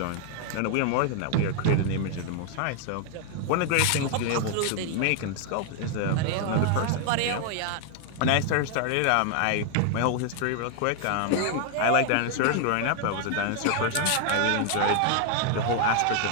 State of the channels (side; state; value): both; different; correlation 0.00